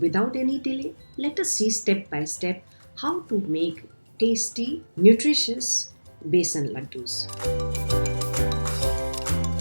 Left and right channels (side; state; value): both; inverted; correlation -1.00